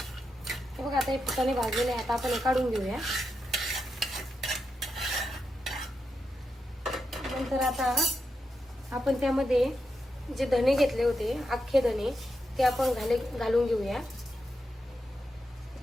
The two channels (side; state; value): both; normal; correlation 0.86